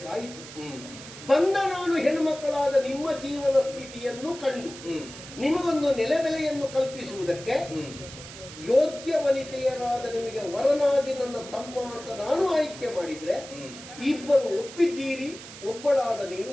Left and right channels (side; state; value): right; noise; hiss, 14 dB below the sound